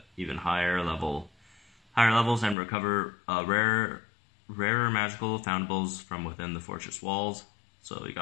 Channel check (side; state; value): right; drops out; at 2.6 s